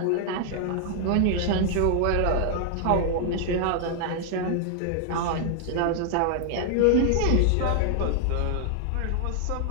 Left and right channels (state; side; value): different; both; correlation 0.00